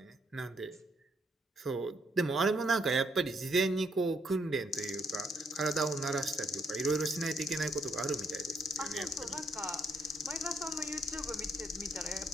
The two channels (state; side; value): normal; both; correlation 0.71